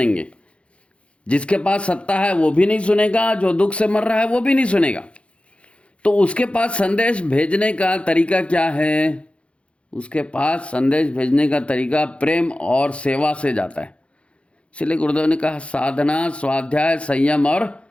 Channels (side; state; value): right; late; 0.060 ms